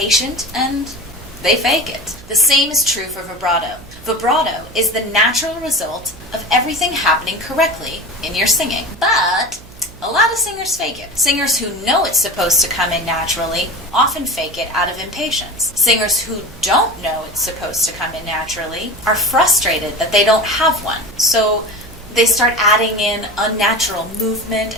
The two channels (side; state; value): right; noise; hum, 21 dB below the sound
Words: and they fake it. The same is true for vibrato. Vibrato is the natural result of everything happening correctly in your singing. But a lot of singers fake it. Singers who know it's supposed to come in naturally often fake it out of impatience. Singers who don't know it's supposed to come in naturally are frustrated that they don't have one. So they start adding in unnatural movement